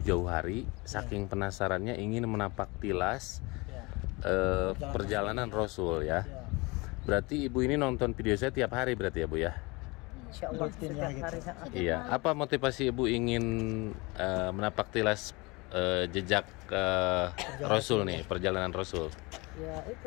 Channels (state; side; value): quieter; right; 25.5 dB